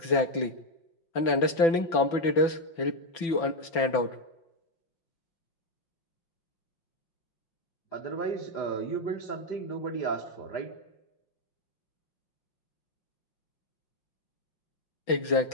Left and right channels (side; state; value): right; late; 6.0 ms